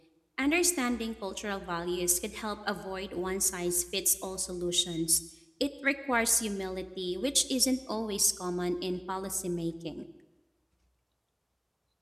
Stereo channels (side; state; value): both; identical; correlation 1.00